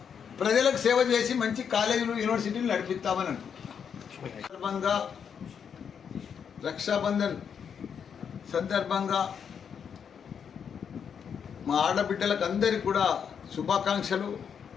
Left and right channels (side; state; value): right; quieter; 7.3 dB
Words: ప్రజలకు సేవ చేసి మంచి కాలేజీలు యూనివర్సిటీలు నడిపిస్తామని అనుకుంటున్నాను. సందర్భంగా రక్షాబంధన్ సందర్భంగా మా ఆడబిడ్డలకు అందరికీ కూడా శుభాకాంక్షలు.